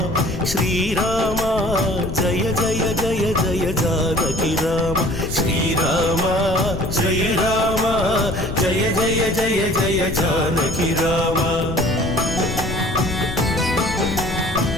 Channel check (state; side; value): noise; left; rumble, 7 dB below the sound